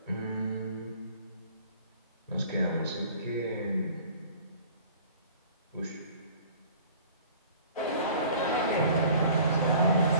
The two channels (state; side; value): inverted; both; correlation -0.48